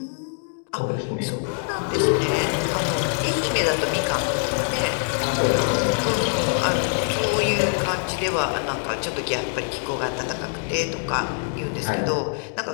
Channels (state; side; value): silent; right; 63 dB below the other